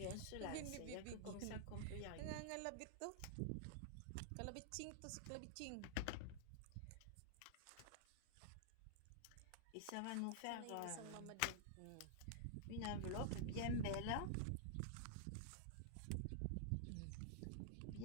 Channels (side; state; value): both; different; correlation -0.01